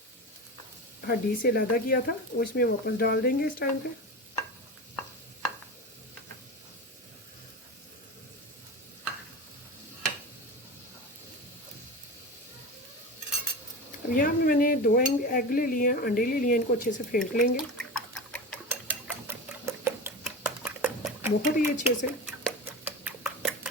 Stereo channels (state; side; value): normal; both; correlation 0.26